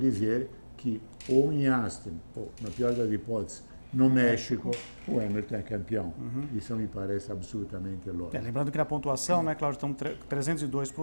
que ou em Austin, ou na pior das hipóteses, no México, o Hamilton é campeão. Isso me parece absolutamente lógico. Lembrando que na pontuação, né, Cláudio, estão 302 para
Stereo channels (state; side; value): inverted; both; correlation -1.00